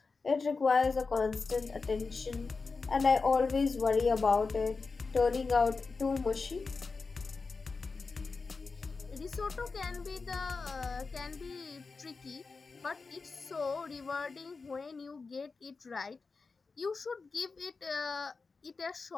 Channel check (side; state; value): right; quieter; 4.4 dB